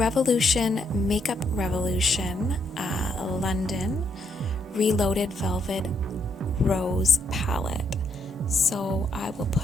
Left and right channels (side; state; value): both; normal; correlation 0.75